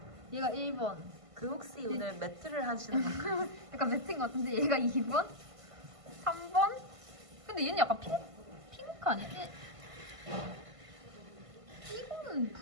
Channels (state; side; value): late; left; 1.5 ms